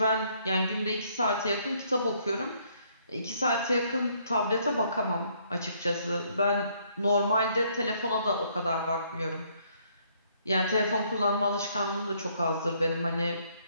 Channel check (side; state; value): both; inverted; correlation -0.67